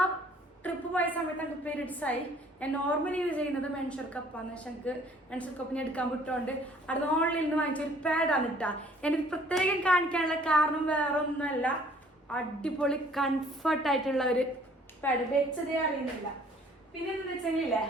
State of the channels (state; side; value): normal; both; correlation 0.57